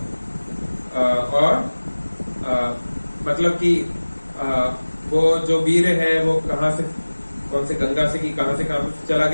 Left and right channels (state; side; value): inverted; both; correlation -1.00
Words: और मतलब कि वो जो वीर है वो कहाँ से, कौन से गंगा से कि कहाँ से चला